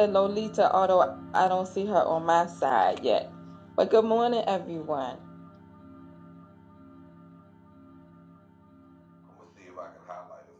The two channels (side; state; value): both; identical; correlation 1.00